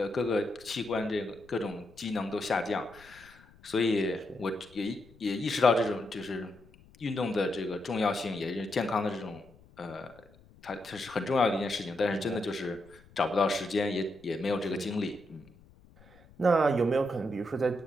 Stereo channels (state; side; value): noise; left; rumble, 26 dB below the sound